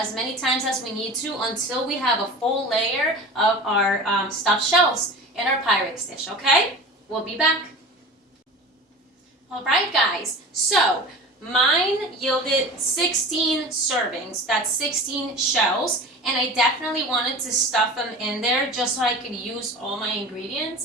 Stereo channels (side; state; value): both; normal; correlation 0.36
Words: many times as we need to until we have a full layer of our stuffed shells in our Pyrex dish, okay? We'll be back. All right, guys. So mine yielded 16 servings. That's 16 shells. And I definitely wanted to stuff them in there just so I could use all my